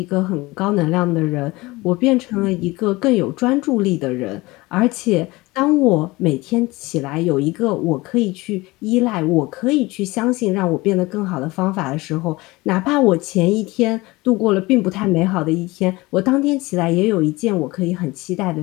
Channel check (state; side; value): quieter; right; 21.6 dB